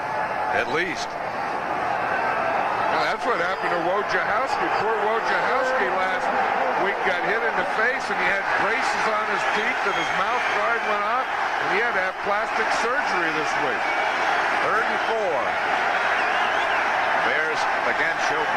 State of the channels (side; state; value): both; identical; correlation 1.00